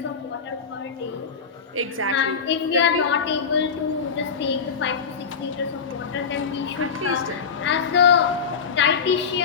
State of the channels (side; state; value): right; quieter; 6.0 dB